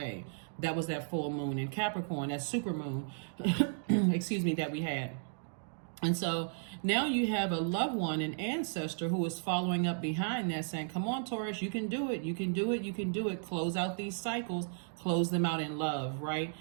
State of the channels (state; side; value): silent; left; digital silence